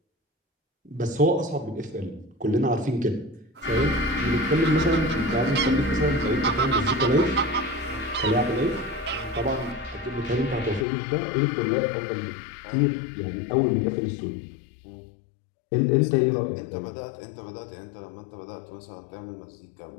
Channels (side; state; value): right; drops out; at 10.9 s